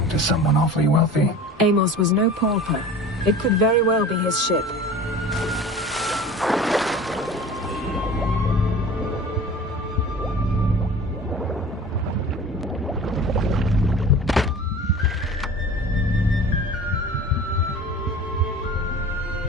to someone awfully wealthy. Amos was no pauper. It could very well be his ship.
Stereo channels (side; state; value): both; normal; correlation 0.40